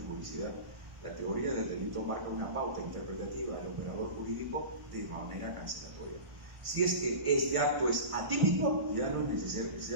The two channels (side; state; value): left; late; 1.1 ms